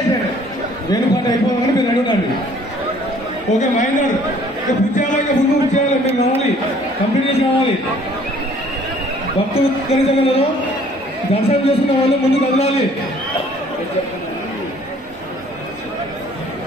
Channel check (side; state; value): both; normal; correlation 0.57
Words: వేణుపాటి అయిపోవాలని మీరు రెడీ ఉండండి. ఓకే మహేందర్ పూజ చేయాలి. ఇంకా ముందు పూజ చేయాలి. మీరు కావాలి కంప్లీట్ చేసి కావాలి. భక్తులు కలిసగలరు. దర్శనం చేసుకున్న వాళ్ళు ముందు కదలాలి.